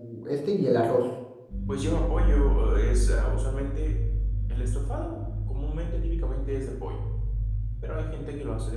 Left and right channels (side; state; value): both; identical; correlation 1.00